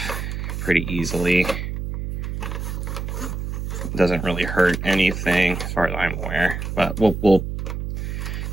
pretty easily. Doesn't really hurt anything as far as I'm aware, but we'll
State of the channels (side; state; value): right; noise; hum, 4 dB below the sound